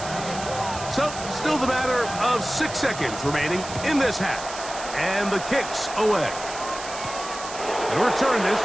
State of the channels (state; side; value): noise; right; hiss, 11 dB below the sound